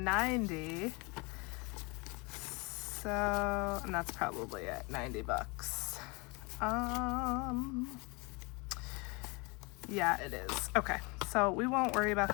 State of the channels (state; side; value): quieter; right; 28.3 dB